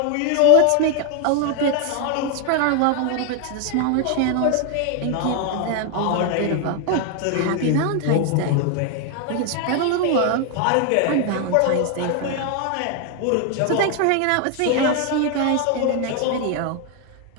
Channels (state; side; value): different; both; correlation 0.00